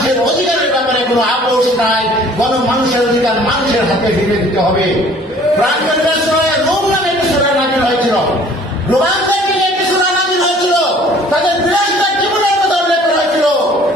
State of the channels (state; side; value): normal; both; correlation 0.53